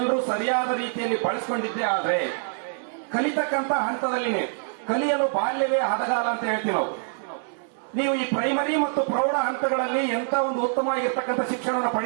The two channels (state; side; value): silent; left; digital silence